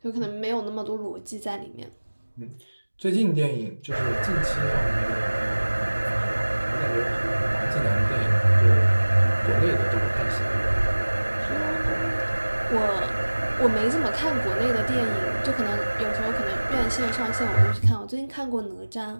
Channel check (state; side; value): inverted; both; correlation -1.00